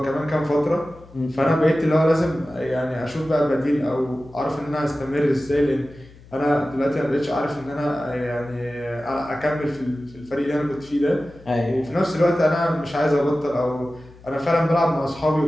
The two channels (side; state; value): left; noise; hum, 22 dB below the sound